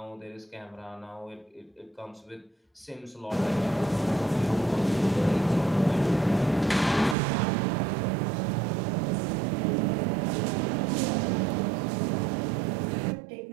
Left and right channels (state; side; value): drops out; left; at 7.2 s